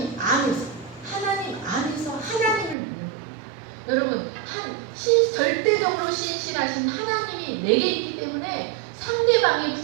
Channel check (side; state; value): left; drops out; at 2.8 s